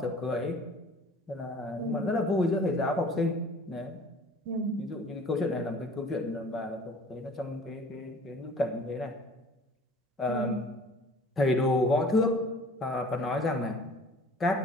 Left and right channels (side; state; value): both; normal; correlation 0.49